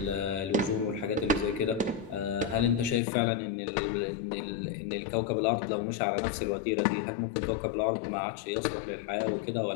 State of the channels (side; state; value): right; drops out; at 3.0 s